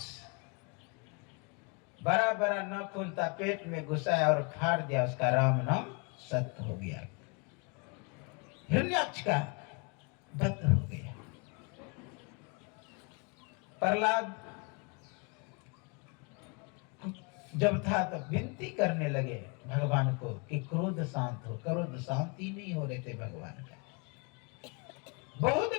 बड़ा बड़ा नाखून था, पेट में घुसाया और फाड़ दिया, उसका राम नाम सत्य हो गया। हिरण्याक्ष का वध हो गया। प्रहलाद जब था तो विनती करने लगे भगवान को कि क्रोध शांत हो। क्रोध शांति नहीं हो रहे थे भगवान का। बहुत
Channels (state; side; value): quieter; right; 32.7 dB